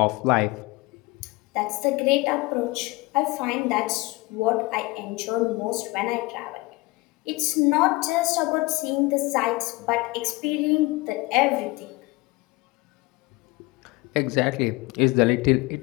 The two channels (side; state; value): right; quieter; 23.0 dB